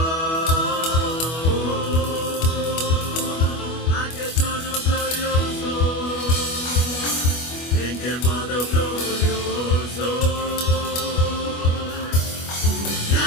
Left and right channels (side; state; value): right; late; 25 ms